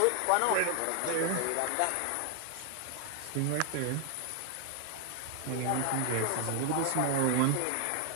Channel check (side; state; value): both; different; correlation 0.00